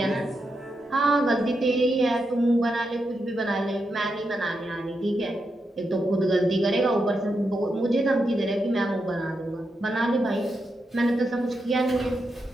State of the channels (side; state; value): both; normal; correlation 0.85